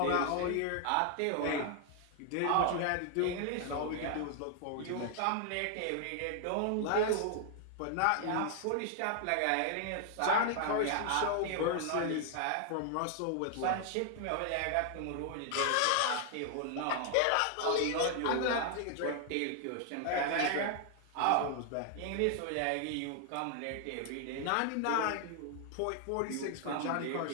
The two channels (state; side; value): different; both; correlation 0.00